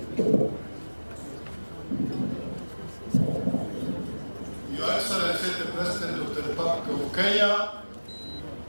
Your Excellency, the President of the Republic of Kenya,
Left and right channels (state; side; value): inverted; both; correlation -1.00